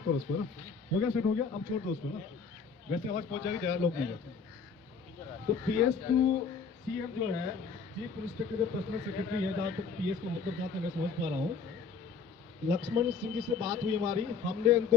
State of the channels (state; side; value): quieter; right; 5.5 dB